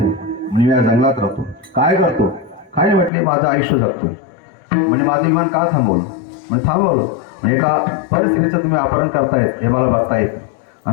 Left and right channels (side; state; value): right; drops out; at 3.1 s